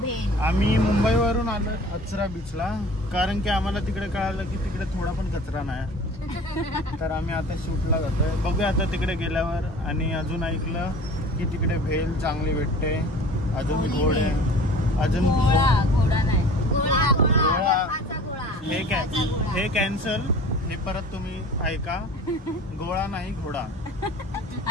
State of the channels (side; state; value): both; normal; correlation 0.44